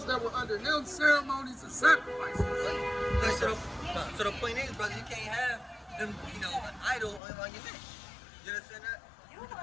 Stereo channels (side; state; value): right; drops out; at 7.2 s